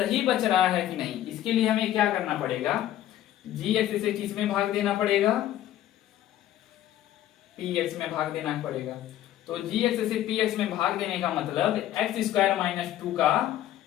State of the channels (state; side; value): quieter; right; 12.8 dB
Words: बच रहा है कि नहीं। इसके लिए हमें क्या करना पड़ेगा, gx से किस में भाग देना पड़ेगा, px में भाग देना पड़ेगा। तो gx से px में भाग देने का मतलब x² - 2 का